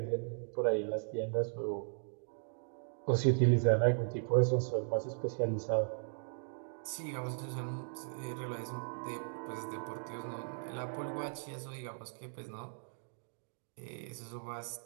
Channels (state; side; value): silent; left; digital silence